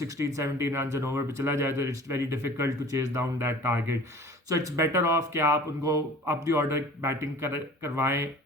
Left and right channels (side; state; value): both; normal; correlation 0.45